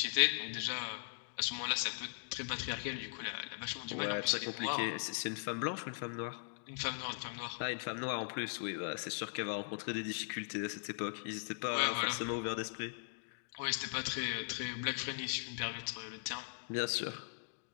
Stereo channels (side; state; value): right; silent; digital silence